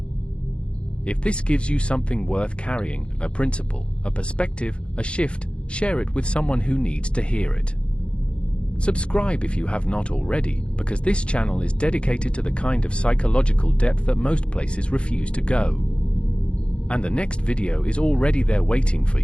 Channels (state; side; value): late; right; 0.057 ms